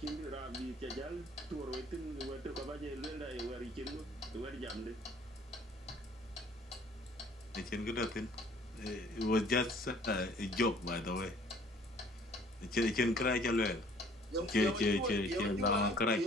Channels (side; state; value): both; normal; correlation 0.56